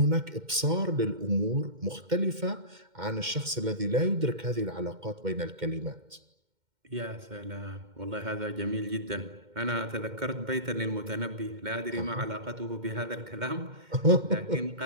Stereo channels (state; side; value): late; left; 2.1 ms